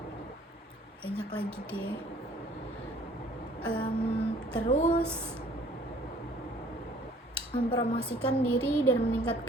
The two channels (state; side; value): normal; both; correlation 0.56